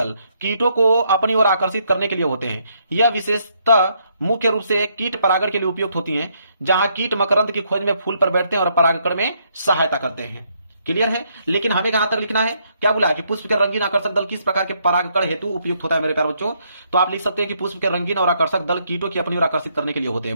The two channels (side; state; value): both; inverted; correlation -0.73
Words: कीटों को अपनी ओर आकर्षित करने के लिए होते हैं। यह विशेषता मुख्य रूप से कीट परागण के लिए उपयुक्त होती हैं, जहां कीट मकरंद की खोज में फूल पर बैठते हैं और परागकण में सहायता करते हैं। क्लियर है। लेकिन हमें कहां तक लिखना है, क्या बोला है कि पुष्प के रंगीन आकर्षक दल किस प्रकार के परागकण हेतु उपयुक्त होता है मेरे प्यारे बच्चों। तो आप लिख सकते हैं कि पुष्प के रंगीन और आकर्षक दल कीटों की अपनी ओर आकर्षित करने के लिए होते